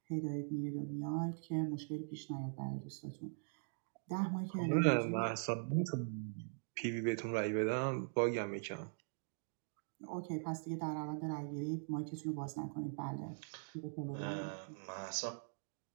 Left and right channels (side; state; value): left; silent; digital silence